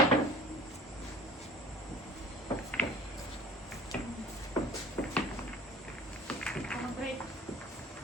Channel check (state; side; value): normal; both; correlation 0.44